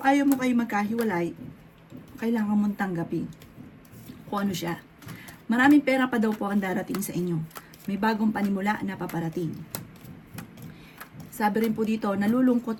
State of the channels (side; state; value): both; identical; correlation 1.00